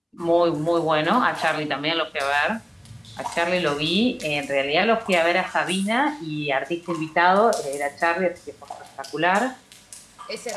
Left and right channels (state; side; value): identical; both; correlation 1.00